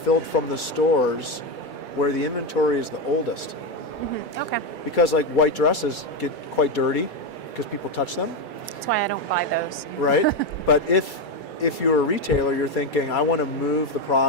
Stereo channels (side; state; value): right; late; 2.3 ms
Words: from the stores where the inventory is the oldest. Mm-hmm. Okay. Because like white dresses get quite dirty because people touch them. That's why I don't buy those. Right? But if you're a retailer, you're thinking, I want to move the